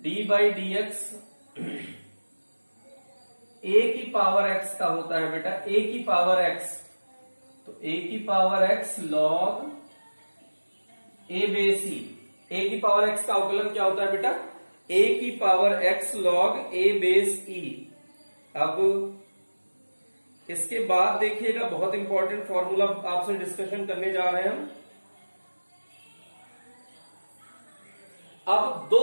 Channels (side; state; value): both; inverted; correlation -1.00